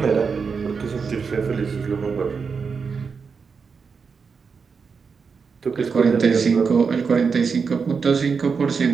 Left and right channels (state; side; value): quieter; left; 5.5 dB